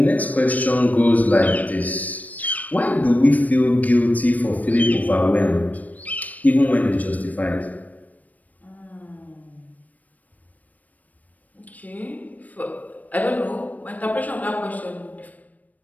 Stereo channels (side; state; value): right; late; 0.075 ms